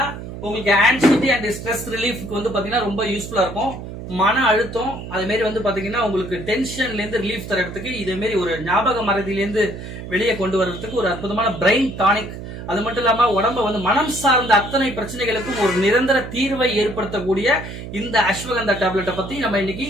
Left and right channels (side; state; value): right; noise; hum, 10 dB below the sound